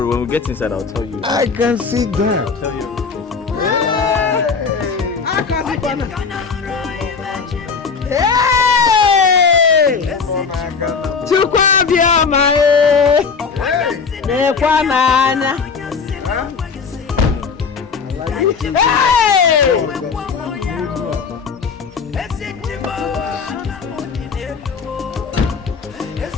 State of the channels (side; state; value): right; quieter; 5.3 dB